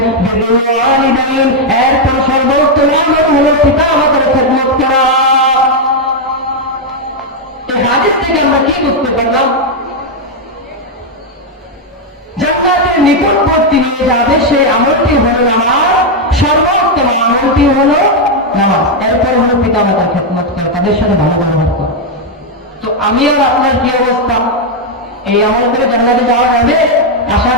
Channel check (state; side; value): normal; both; correlation 0.01